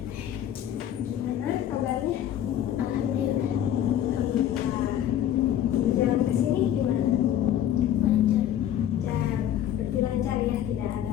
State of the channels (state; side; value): quieter; right; 11.0 dB